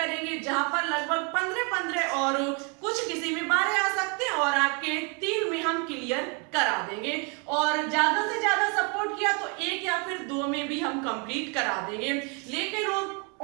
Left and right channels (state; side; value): quieter; left; 34.2 dB